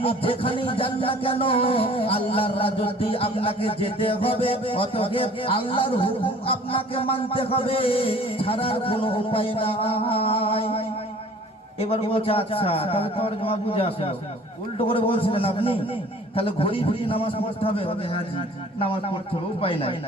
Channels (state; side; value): normal; both; correlation 0.50